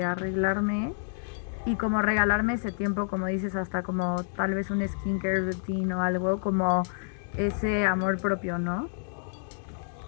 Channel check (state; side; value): silent; right; digital silence